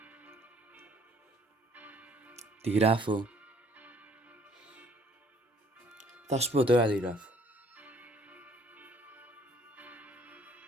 Τι γράφω? Θα σου πω τώρα τι γράφω.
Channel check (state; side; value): normal; both; correlation 0.61